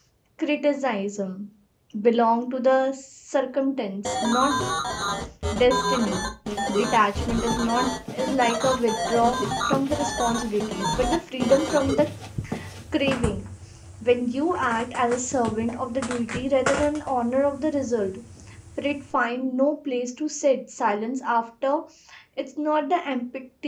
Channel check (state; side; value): identical; both; correlation 1.00